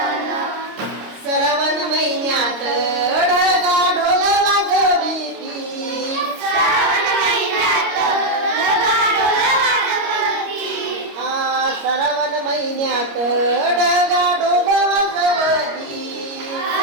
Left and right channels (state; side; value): late; left; 26 ms